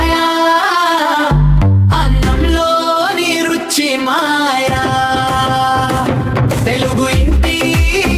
అన్నంలోని రుచి మాయా, తెలుగు ఇంటి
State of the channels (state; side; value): identical; both; correlation 1.00